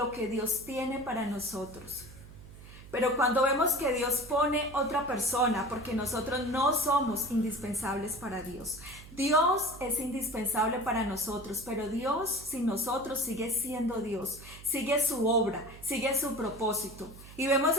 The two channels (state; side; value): noise; right; hum, 17 dB below the sound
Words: que Dios tiene para nosotros. Pero cuando vemos que Dios pone otra persona, porque nosotros no somos indispensables para Dios. Dios es indispensable para nosotros, pero Dios sin nosotros sigue siendo Dios, sigue su obra, sigue su propósito. Y vemos